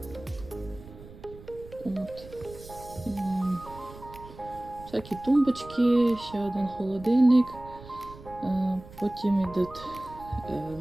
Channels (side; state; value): right; noise; rumble, 18 dB below the sound